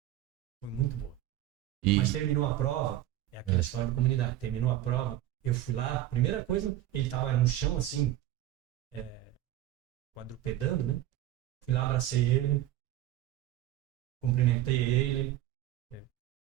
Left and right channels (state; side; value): quieter; left; 13.6 dB